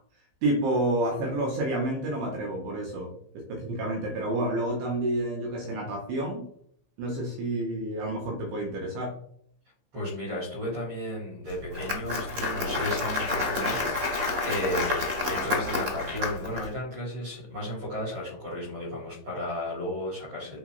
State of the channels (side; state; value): left; late; 15 ms